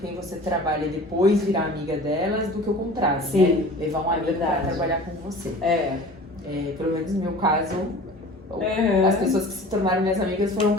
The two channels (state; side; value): normal; both; correlation 0.41